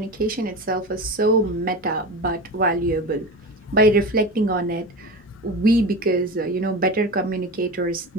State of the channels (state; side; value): normal; both; correlation 0.27